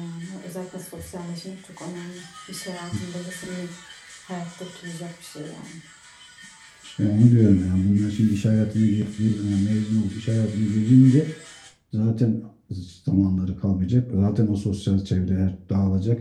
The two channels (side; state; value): both; identical; correlation 1.00